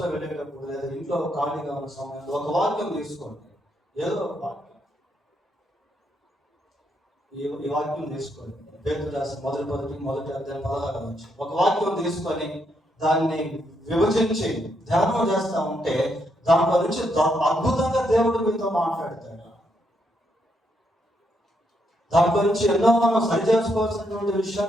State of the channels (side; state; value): both; normal; correlation 0.77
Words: వెళ్ళేటప్పుడు లేదా ఇంట్లో ఖాళీగా ఉన్న సమయంలో ఒక వాక్యం తీసుకోండి. ఏదో ఒక వాక్యం, ఈ వాక్యం తీసుకోండి. పేతురు రాసిన మొదటి అధ్యాయం 16వ వచనం. ఒక వాక్యం తీసుకొని దాన్ని విభజించి ధ్యానం చేస్తా ఉంటే దాంట్లో నుంచి అద్భుతంగా దేవుడు మీతో మాట్లాడతాడు. దాంట్లో నుంచి ఎన్నో మనం సరి చేసుకోవాల్సినటువంటి